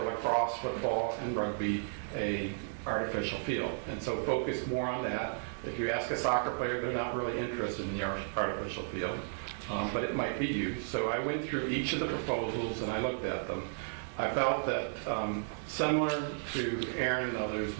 lacrosse, football, and rugby, a artificial field. And so focus more on that. If you ask a soccer player, they're not really interested in the artificial field, but it might be used. So I went through each of the proposals and I looked at them. I felt that similar to Aaron and others,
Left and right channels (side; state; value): left; silent; digital silence